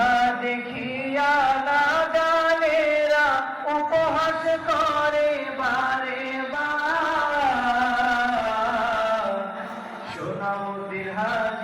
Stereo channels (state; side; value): identical; both; correlation 1.00